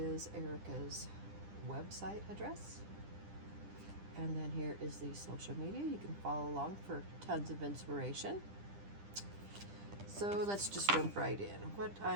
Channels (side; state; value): left; late; 10 ms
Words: Erica's website address, and then here is the social media. You can follow along for tons of inspiration. So let's just jump right in. What